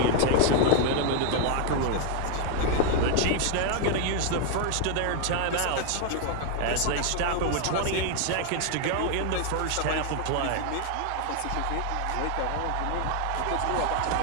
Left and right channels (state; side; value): different; both; correlation 0.01